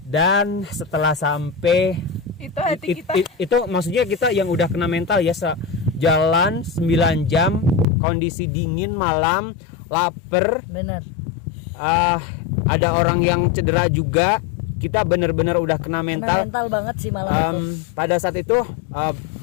Dan setelah sampai Itu hati kita. itu maksudnya kita yang udah kena mental ya, jalan 9 jam, kondisi dingin malam, lapar, Benar. ada orang yang cedera juga. Kita benar-benar udah kena mental. Mental banget sih malam itu. Pada saat itu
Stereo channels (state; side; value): drops out; right; at 7.9 s